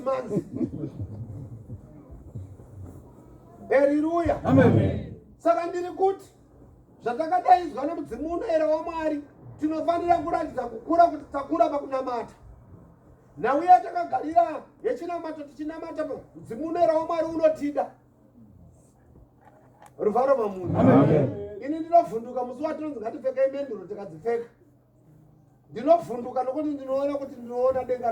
months. Haleluya. Saka ndiri kuti zvatakadaizwa nemudzimu unoera waMwari tinofanira kuratidza kukura kuti takura pakunamata. Nhau yatakagarira yechinamato tichinamata mudzimu unoera waMwari unotida. Ruvaro mamunhu. Ini ndinovhunduka musi watinonzi ngatipfekei menduro tikadzipfeka. Ndinovhunduka nokuti ndinoona kuti ndinoona denga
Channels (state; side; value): identical; both; correlation 1.00